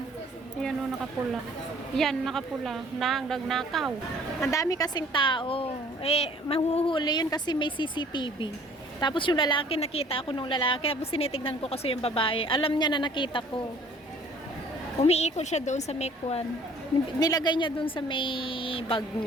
Ayan, oh, nakapula. Yan, nakapula. Nagnakaw. Ang dami kasing tao. Eh, mahuhuli yun kasi may CCTV. Tapos yung lalaki, nakita ako nung lalaki. Tapos sinitignan ko kasi yung babae. Alam niya na nakita ko. Umiikot siya doon sa Mekwan. Nilagay niya doon sa may bag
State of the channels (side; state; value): both; normal; correlation 0.54